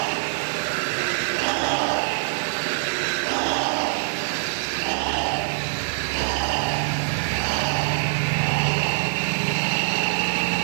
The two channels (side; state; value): left; silent; digital silence